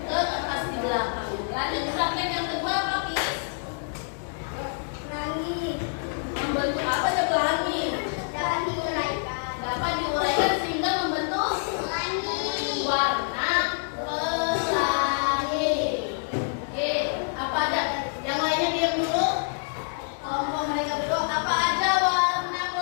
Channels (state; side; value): silent; right; digital silence